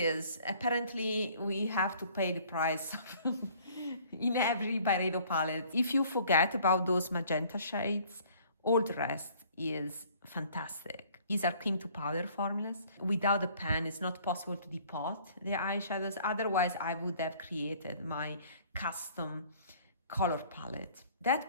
Apparently, we have to pay the price in every Byredo palette. If you forget about those magenta shades, all the rest is fantastic. These are cream to powder formulas. Without a pen, it's not possible to depot the eyeshadows. Otherwise, I would have created my custom color palette. That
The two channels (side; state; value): both; inverted; correlation -0.55